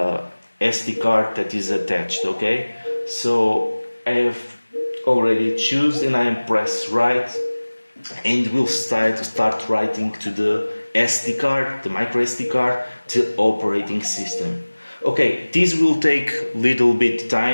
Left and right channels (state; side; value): inverted; both; correlation -1.00